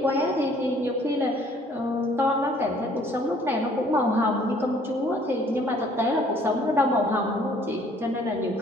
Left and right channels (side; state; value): both; normal; correlation 0.59